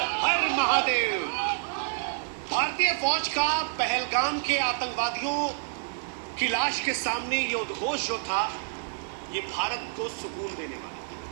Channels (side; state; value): left; silent; 59 dB below the other